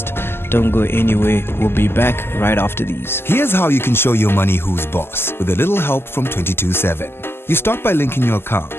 Don't go anywhere. We'll be back right after these. Here's how you can show your money who's boss with a little help from 227. You start by linking your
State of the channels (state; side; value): late; right; 0.12 ms